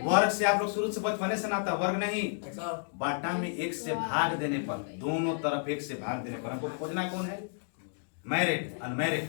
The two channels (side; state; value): right; silent; digital silence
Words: वर्ग से आप लोग शुरू से बचपने से नाता, वर्ग नहीं बाटा में एक से भाग देने पर, दोनों तरफ एक से भाग देने पर हमको खोजना कौन है? मैरिड अनमैरिड